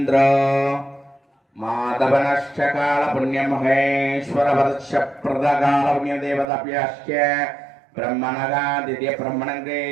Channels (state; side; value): drops out; left; at 6.5 s